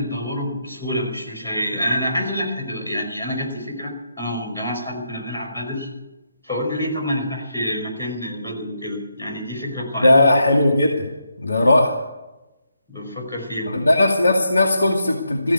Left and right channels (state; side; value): inverted; both; correlation -0.81